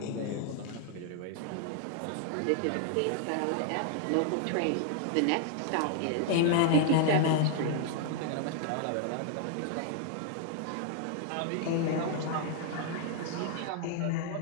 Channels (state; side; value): different; both; correlation 0.00